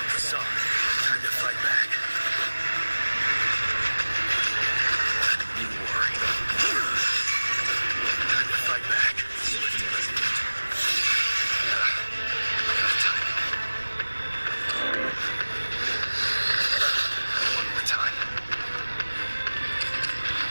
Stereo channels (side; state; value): both; inverted; correlation -1.00